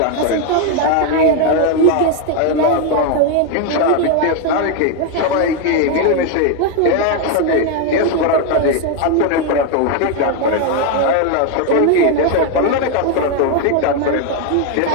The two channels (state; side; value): different; both; correlation 0.01